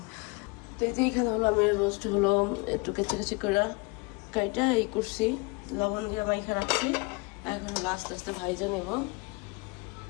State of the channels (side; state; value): right; quieter; 27.5 dB